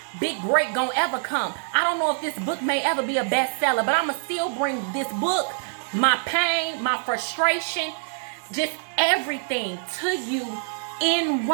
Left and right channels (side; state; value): left; silent; digital silence